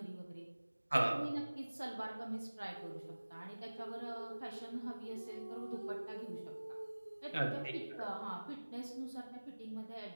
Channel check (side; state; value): both; inverted; correlation -1.00